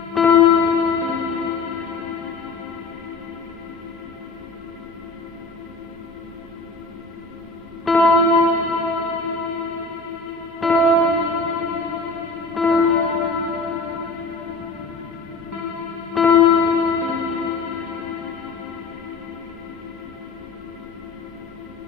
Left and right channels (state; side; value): quieter; right; 3.9 dB